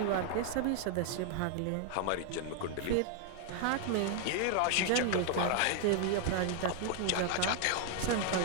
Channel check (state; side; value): different; both; correlation 0.00